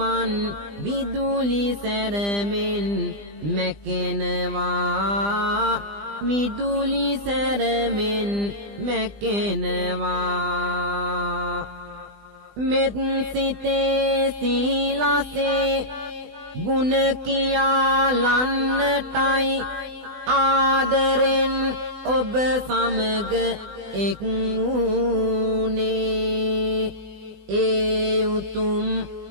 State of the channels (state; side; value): late; left; 20 ms